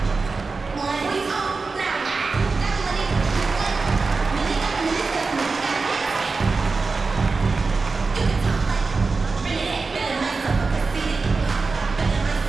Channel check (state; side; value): quieter; left; 4.2 dB